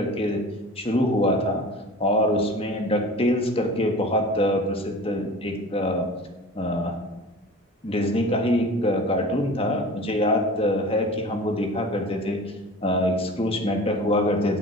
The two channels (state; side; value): normal; both; correlation 0.39